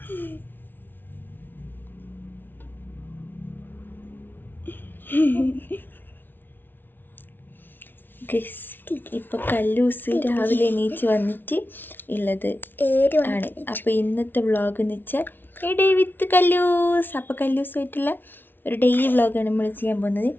ഇപ്പൊ കല്ലൂസ് രാവിലെ എണീച്ച് വന്നിട്ട് ഉള്ളത് ആണ്. അപ്പൊ ഇന്നത്തെ വ്ളോഗ് എന്ന് വെച്ചാൽ ഡേ വിത്ത് കല്ലൂസ്. അപ്പൊ കല്ലൂസായിട്ടുള്ള ഒരു ഡെയിലി വ്ളോഗാണ് നമ്മൾ ചെയ്യാൻ പോകുന്നത്.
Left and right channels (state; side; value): late; right; 0.097 ms